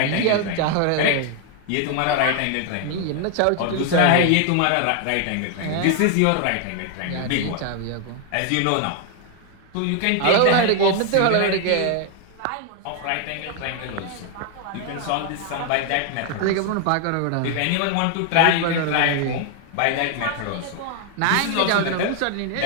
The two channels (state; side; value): different; both; correlation 0.00